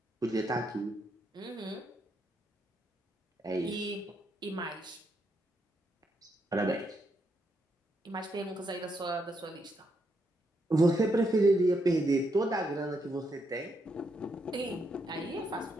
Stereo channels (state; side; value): normal; both; correlation 0.78